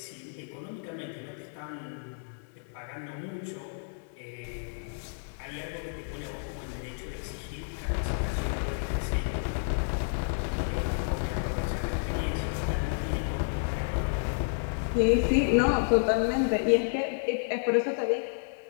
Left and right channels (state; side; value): silent; right; 57 dB below the other